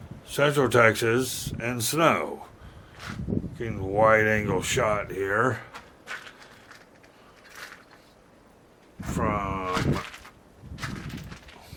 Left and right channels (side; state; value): both; identical; correlation 1.00